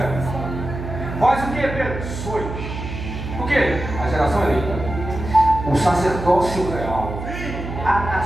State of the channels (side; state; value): right; noise; hum, 7 dB below the sound